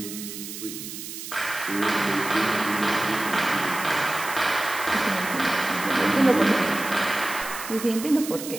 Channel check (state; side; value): noise; right; hiss, 10 dB below the sound